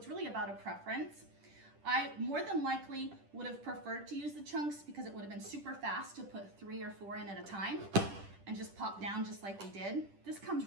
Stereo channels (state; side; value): late; left; 10 ms